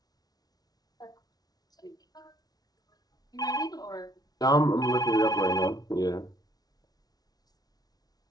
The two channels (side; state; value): right; late; 0.19 ms